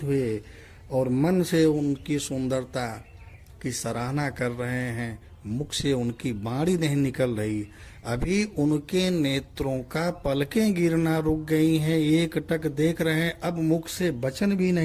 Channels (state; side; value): identical; both; correlation 1.00